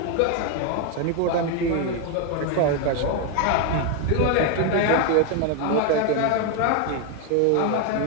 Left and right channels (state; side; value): different; both; correlation 0.01